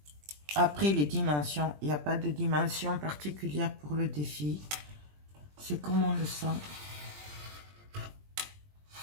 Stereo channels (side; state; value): left; late; 20 ms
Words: Après les dimensions, il n'y a pas de dimension particulière pour le défi. C'est comme on le sent.